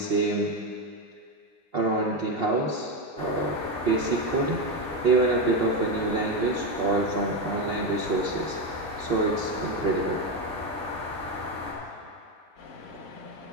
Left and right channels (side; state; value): both; normal; correlation 0.12